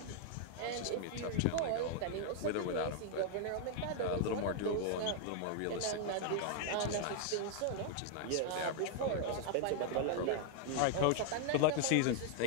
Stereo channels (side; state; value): both; different; correlation 0.00